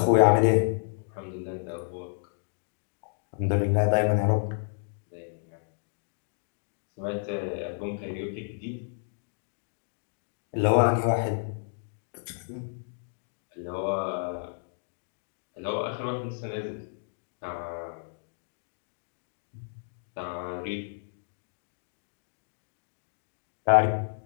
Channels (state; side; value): silent; right; digital silence